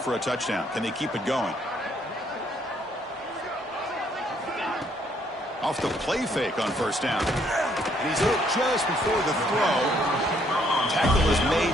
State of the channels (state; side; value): normal; both; correlation 0.68